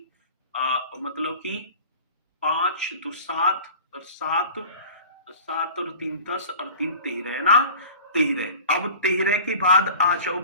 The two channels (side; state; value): both; inverted; correlation -0.40